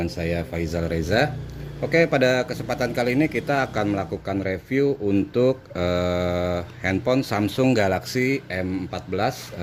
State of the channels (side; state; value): both; identical; correlation 1.00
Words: saya Faizal Reza. Oke, pada kesempatan kali ini kita akan melakukan review untuk handphone Samsung Galaxy M14